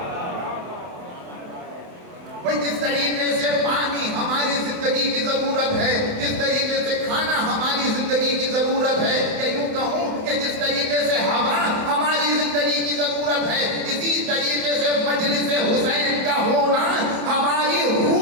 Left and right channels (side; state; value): left; late; 27 ms